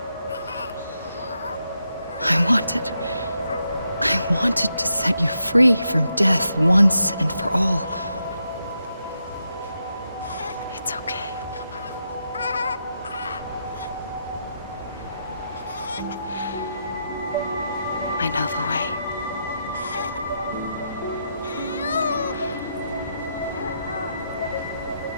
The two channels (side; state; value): both; inverted; correlation -0.82